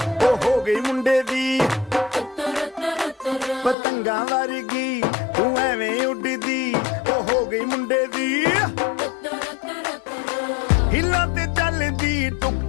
ਓ ਹੋ ਗਈ ਮੁੰਡੇ ਦੀ ਪਤੰਗਾਂ ਵਰਗੀ ਤੂੰ ਐਵੇਂ ਉੱਡਦੀ ਓ ਹੋ ਗਈ ਮੁੰਡੇ ਦੀ ਹਿੱਲਾਂ ਤੇ ਚੱਲਦੀ ਟੁਕ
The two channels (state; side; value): drops out; right; at 3.8 s